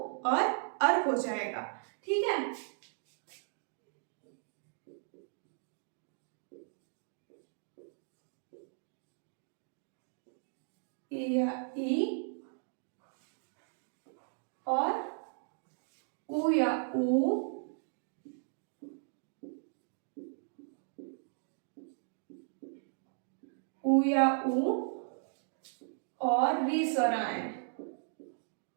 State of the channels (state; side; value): silent; left; digital silence